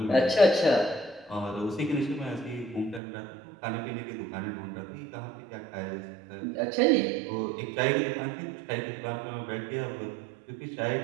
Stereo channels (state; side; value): drops out; left; at 3.0 s